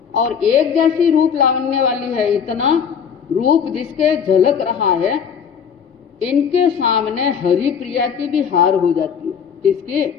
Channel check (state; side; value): quieter; right; 7.3 dB